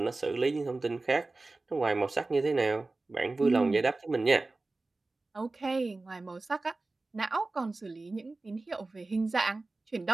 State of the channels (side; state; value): left; quieter; 3.3 dB